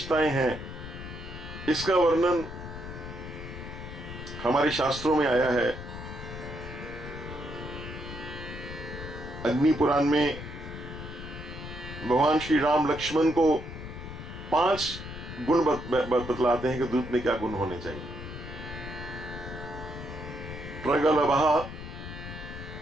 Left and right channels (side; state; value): left; noise; rumble, 10 dB below the sound